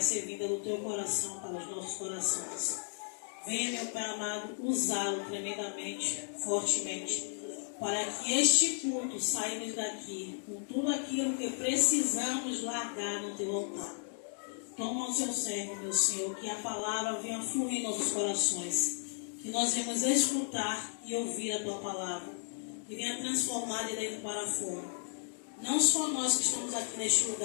ser vinda do teu coração para os nossos corações, venha, meu Pai amado, usá-lo tremendamente, fortemente, para que este culto saímos daqui com tudo aquilo que precisamos largar no teu altar. Toma o seu servo, meu Senhor, que a palavra venha fluir em nossos corações, que nós venhamos escutar e ouvir a tua palavra, que venha transformar de dentro para fora. Não só nós que estamos aqui neste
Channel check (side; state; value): right; silent; digital silence